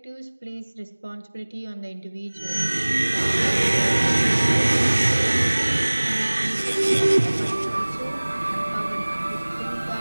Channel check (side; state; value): both; inverted; correlation -1.00